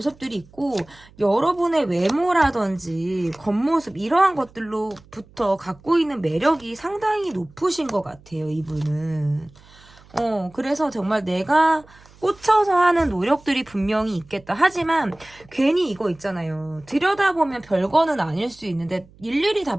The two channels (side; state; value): right; noise; hum, 26 dB below the sound